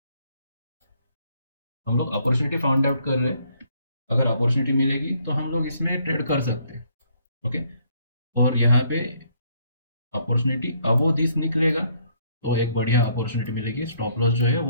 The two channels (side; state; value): both; inverted; correlation -0.67